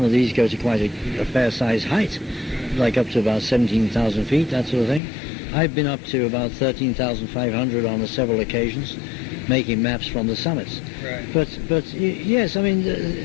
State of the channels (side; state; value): right; drops out; at 5.0 s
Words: of these go to quite a fair-sized height, like up to about 17,000 feet, that sort of thing. I've been up to about 13,500 on several occasions, making maps from the summits. Right. But yes, I mean,